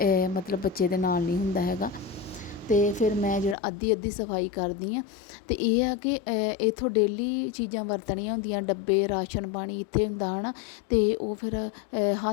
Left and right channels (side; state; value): right; drops out; at 3.6 s